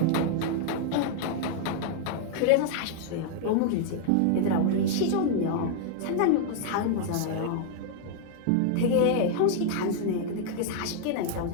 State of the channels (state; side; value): different; both; correlation 0.00